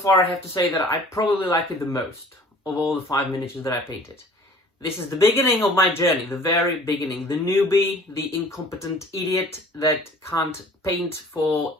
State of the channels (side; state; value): both; normal; correlation 0.49